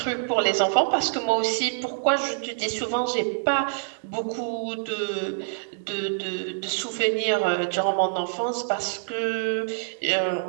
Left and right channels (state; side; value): silent; left; digital silence